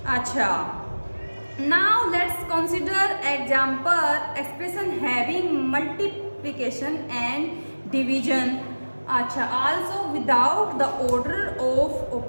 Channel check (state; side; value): inverted; both; correlation -1.00